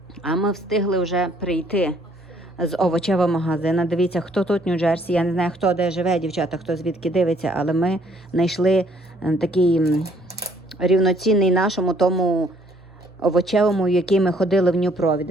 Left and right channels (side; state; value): both; normal; correlation 0.63